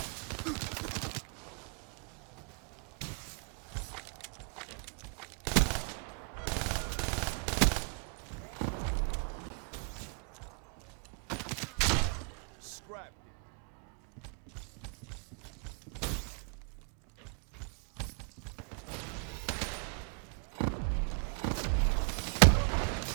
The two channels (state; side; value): quieter; left; 38.9 dB